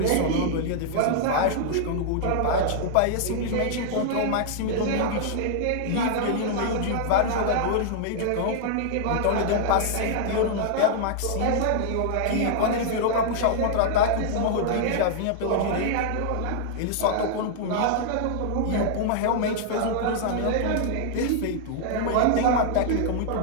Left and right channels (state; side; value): different; both; correlation -0.01